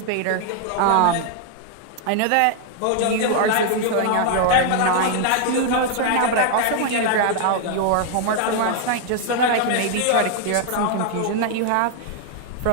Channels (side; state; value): both; different; correlation 0.00